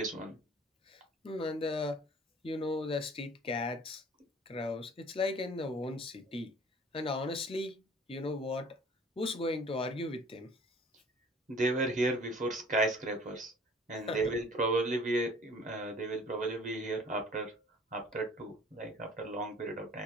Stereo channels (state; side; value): normal; both; correlation 0.50